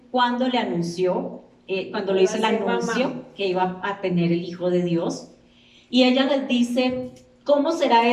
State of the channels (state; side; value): identical; both; correlation 1.00